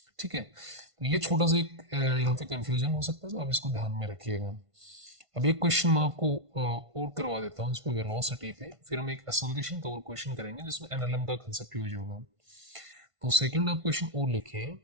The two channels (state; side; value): late; left; 1.5 ms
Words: ठीक है। तो ये छोटा सा एक यहाँ पे कंफ्यूजन हो सकता है, तो आप इसको ध्यान में रखिएगा। अब एक क्वेश्चन मैं आपको और करवा देता हूँ इस पे वेलोसिटी पे, फिर हम एक एसोसिएशन का और क्वेश्चन करेंगे जिसमें एनएलएम का कंसेप्ट यूज होगा। तो सेकंड आप क्वेश्चन और लिखें,